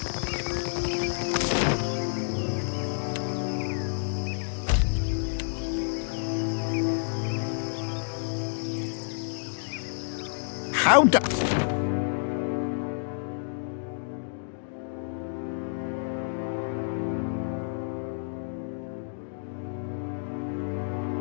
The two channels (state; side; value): silent; right; digital silence